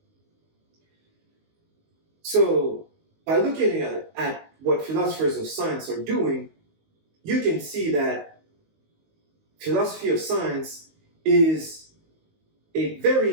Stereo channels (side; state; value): left; late; 19 ms